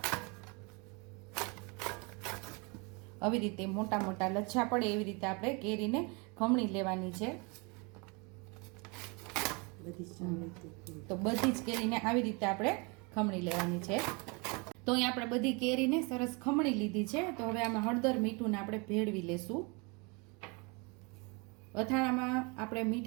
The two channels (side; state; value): left; quieter; 30.2 dB